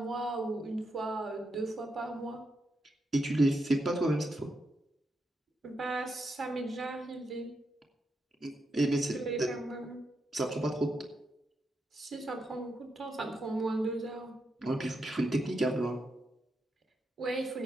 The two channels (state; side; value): normal; both; correlation 0.84